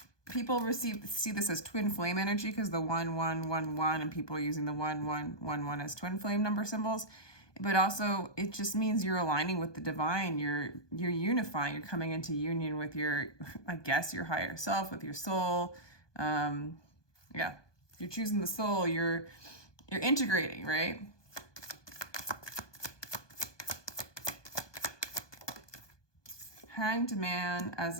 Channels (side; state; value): right; late; 1.2 ms